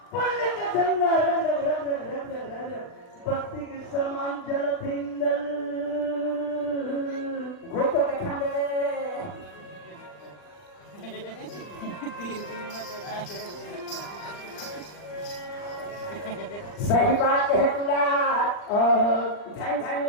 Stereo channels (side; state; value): right; late; 39 ms